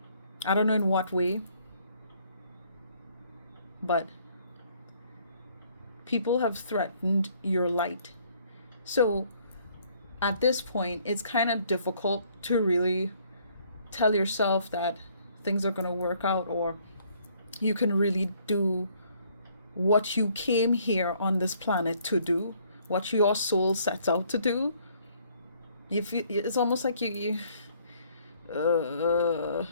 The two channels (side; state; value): both; inverted; correlation -0.63